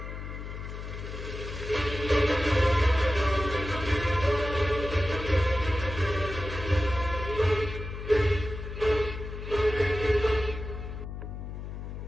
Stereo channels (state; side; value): noise; left; hum, 8 dB below the sound